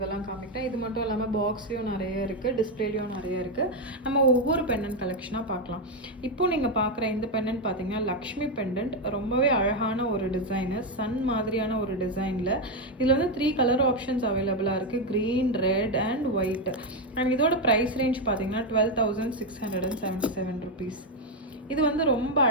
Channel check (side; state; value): both; normal; correlation 0.05